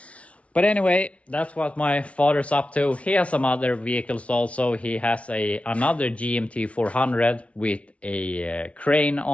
But anyway, that's what my father's up to. He has some other vehicles also. He has another GMT 400 with a crane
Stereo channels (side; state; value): right; late; 0.063 ms